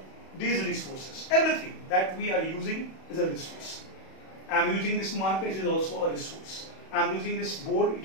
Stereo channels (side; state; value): right; late; 31 ms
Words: these resources. Everything that we are using is a resource. I am using this marker, it is also a resource. I am using this board,